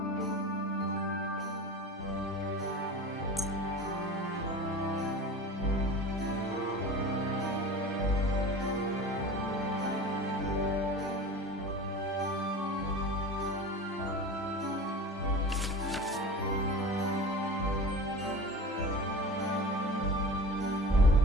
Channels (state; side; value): normal; both; correlation 0.35